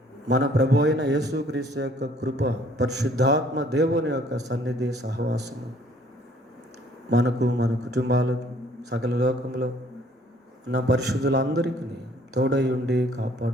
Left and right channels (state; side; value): normal; both; correlation 0.59